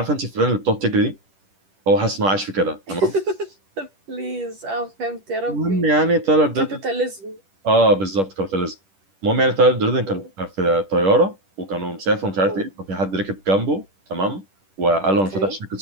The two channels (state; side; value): late; left; 10 ms